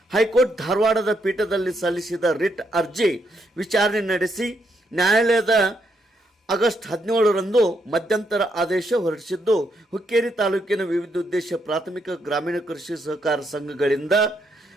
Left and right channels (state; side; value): normal; both; correlation 0.77